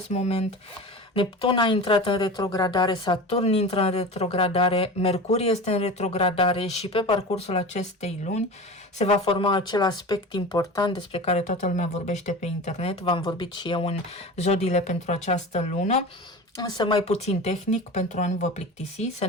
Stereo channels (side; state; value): both; normal; correlation 0.32